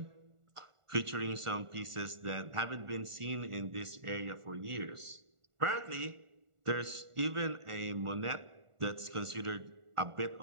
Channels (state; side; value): late; left; 1.4 ms